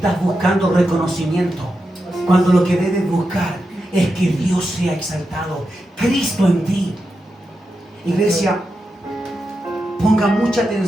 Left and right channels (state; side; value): normal; both; correlation 0.88